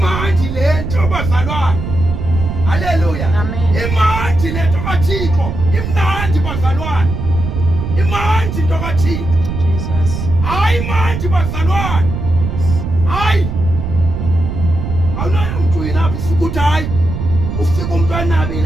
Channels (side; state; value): right; noise; rumble, 4 dB below the sound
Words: lento bazalwane. Haleluya. Amen. Imandi lento kaThixo, imnandi bazalwane. Imandi into kaThixo. Jesus. Hayi manje bazalwane. Hayi. Awunayo umuntu yinaphi ufika uthi hayi. Ufika umuntu